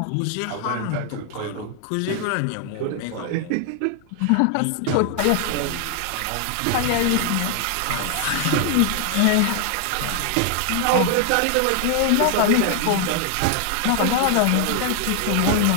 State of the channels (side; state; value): both; different; correlation 0.00